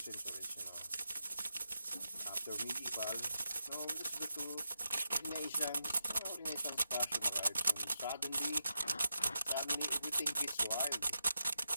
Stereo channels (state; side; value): inverted; both; correlation -0.88